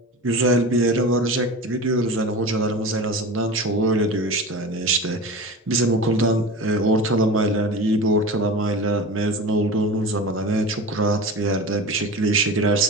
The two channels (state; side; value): normal; both; correlation 0.31